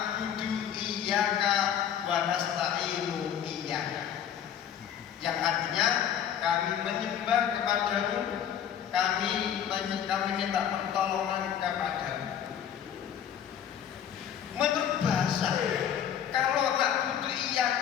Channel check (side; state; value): right; quieter; 9.3 dB